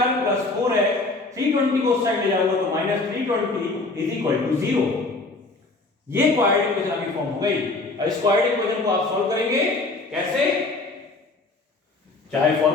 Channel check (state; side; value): quieter; right; 3.4 dB